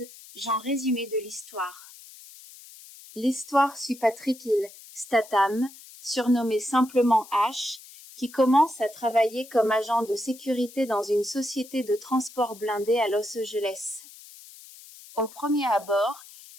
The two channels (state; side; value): noise; left; hiss, 19 dB below the sound